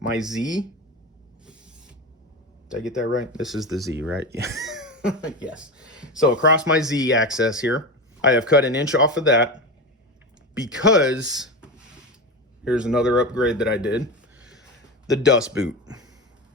Z. Did I get that right? This is the Z, right? Yes. So across my Z axis here, I have cut 1 inch off of that because here's another upgrade that I did. The dust boot.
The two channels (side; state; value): both; normal; correlation 0.22